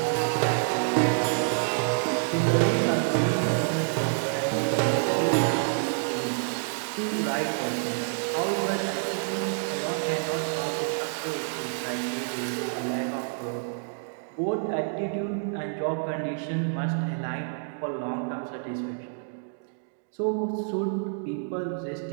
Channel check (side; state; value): left; silent; digital silence